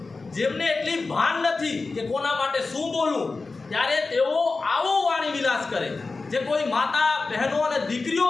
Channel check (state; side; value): quieter; right; 3.9 dB